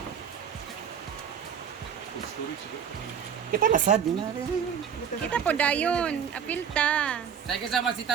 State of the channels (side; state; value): left; quieter; 7.9 dB